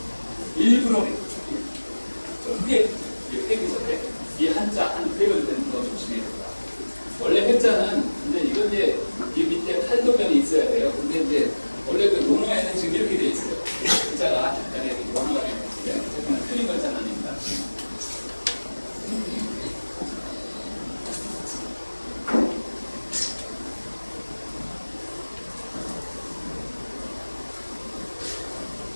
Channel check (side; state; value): both; inverted; correlation -1.00